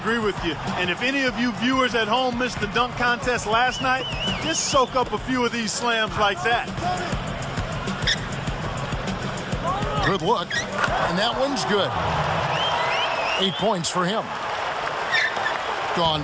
with you. And if any of you viewers at home missed the dunk contest last night, just soak up a few of these slams like that. Good look. And that one's good. 8 points for him.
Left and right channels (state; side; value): identical; both; correlation 1.00